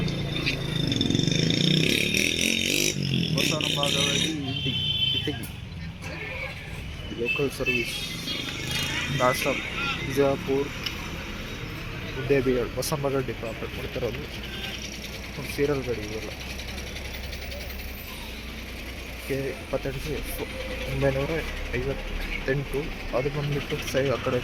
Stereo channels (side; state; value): both; identical; correlation 1.00